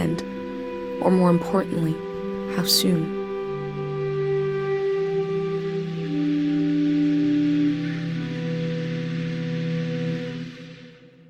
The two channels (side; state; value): both; identical; correlation 1.00